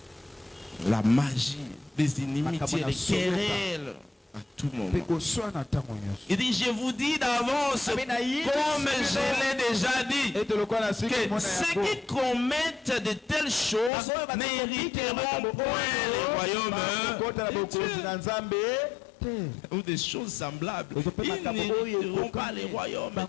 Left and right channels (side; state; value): right; drops out; at 13.9 s